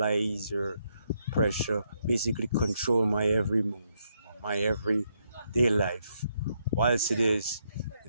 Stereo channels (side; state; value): both; inverted; correlation -0.77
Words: or pressure, basically control my every move, my everyday life. Whilst it is,